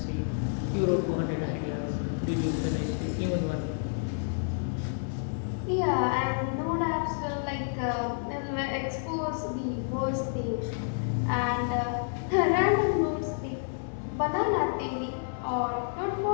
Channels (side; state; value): right; silent; digital silence